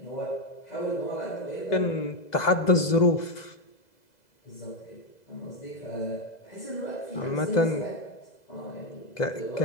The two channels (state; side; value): late; right; 2.0 ms